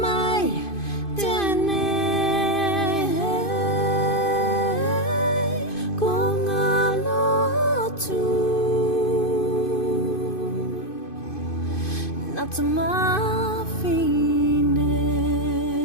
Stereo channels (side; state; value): right; late; 2.5 ms